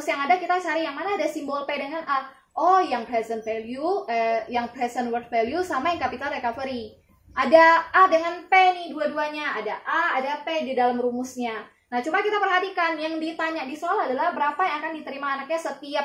yang ada, kita cari yang mana ada simbol P dengan A. Oh, yang present value, yang present worth value sama yang capital recovery. Ada A dengan P nih dua-duanya. Ada A, ada P di dalam rumusnya. Nah, coba kita perhatikan. Yang ditanya di soal adalah berapa yang akan diterima anaknya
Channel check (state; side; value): identical; both; correlation 1.00